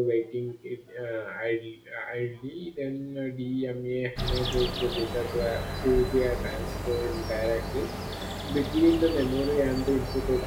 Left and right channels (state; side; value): identical; both; correlation 1.00